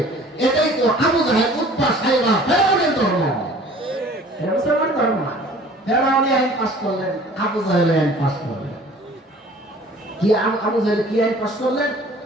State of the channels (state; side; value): normal; both; correlation 0.50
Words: এটাই তো আবু জাহেল, উতবা, সাইবা, ফেরাউনের ধর্ম। মুসলমান ধর্ম না। ফেরাউনি আইন পাস করলেন, আবু জাহেল আইন পাস করলেন। কি আবু জাহেল কি আইন পাস করলেন?